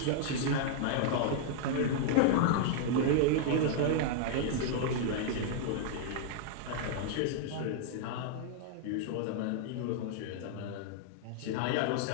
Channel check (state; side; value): different; both; correlation -0.01